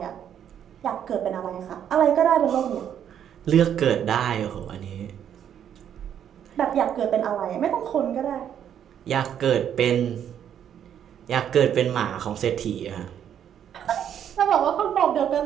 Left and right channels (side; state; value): left; quieter; 9.3 dB